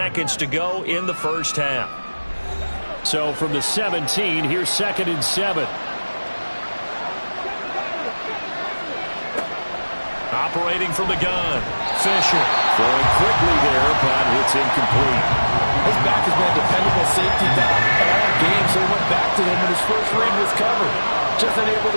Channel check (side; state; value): both; inverted; correlation -1.00